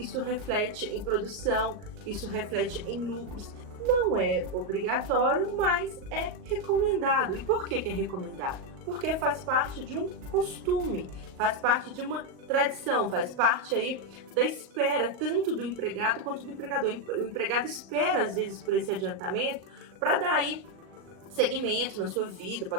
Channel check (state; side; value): late; left; 38 ms